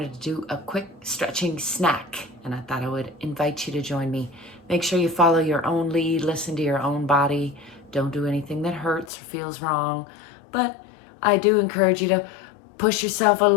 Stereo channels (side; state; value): right; drops out; at 9.1 s